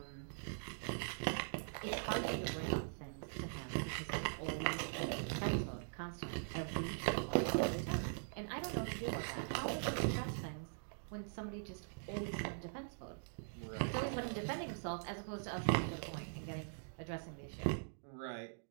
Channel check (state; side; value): silent; left; digital silence